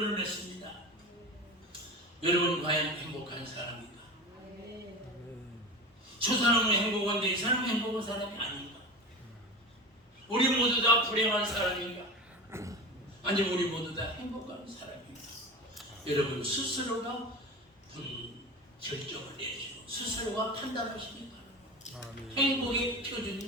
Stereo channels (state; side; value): normal; both; correlation 0.29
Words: 냈습니다. 여러분 과연 행복한 사람인가? 저 사람은 행복한데 이 사람은 행복한 사람이 아닌가? 우리 모두 다 불행한 사람인가? 아니면 우리 모두 다 행복한 사람인가? 여러분 스스로가 결정을 내리시고 스스로가 판단하시기 바랍니다. 행복의 표준이